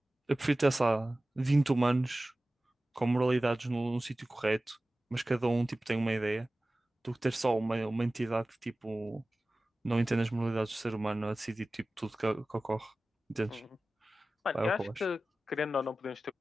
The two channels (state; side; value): normal; both; correlation 0.96